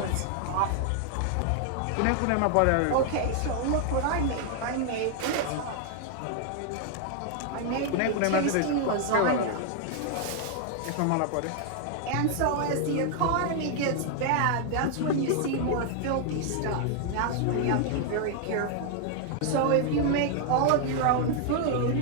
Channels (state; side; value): different; both; correlation 0.00